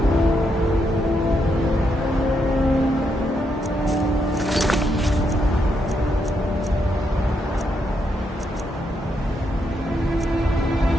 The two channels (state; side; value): normal; both; correlation 0.79